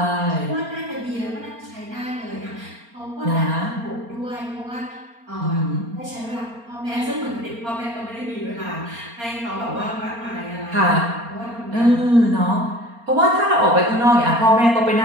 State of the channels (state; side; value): late; left; 4.3 ms